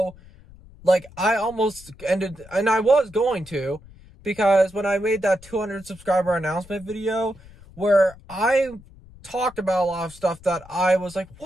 like, I almost ended, and I was going to, because when I made that 200 subscriber announcement video, where I talked about a lot of stuff that I was like,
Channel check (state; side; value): noise; left; rumble, 22 dB below the sound